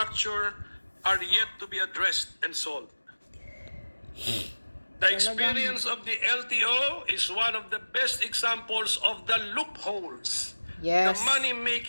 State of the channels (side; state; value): both; inverted; correlation -1.00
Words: are yet to be addressed and solved. The experience of the LTO is one of the best examples of the loopholes, Yes. the